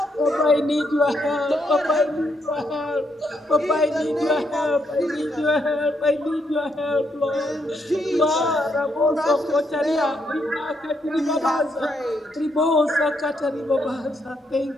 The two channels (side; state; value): both; normal; correlation 0.77